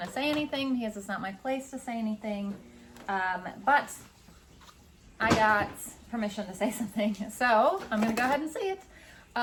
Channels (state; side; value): identical; both; correlation 1.00